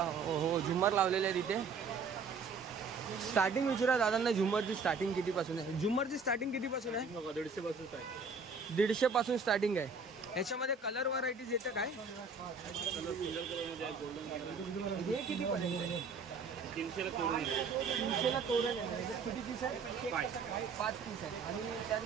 झुम्मर लावलेले आहेत इथे. स्टार्टिंग विचारा दादांना, झुम्मरची स्टार्टिंग कितीपासून आहे? झुम्मरची स्टार्टिंग कितीपासून आहे? 150 पासून 150 पासून स्टार्टिंग आहे. याच्यामध्ये कलर व्हरायटीज येतं काय? हे किती पर्यंत? 300 तोरण 300 तोरण आहे. किती पीस आहे? 5 पीस आहे. आणि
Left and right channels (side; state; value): left; quieter; 4.7 dB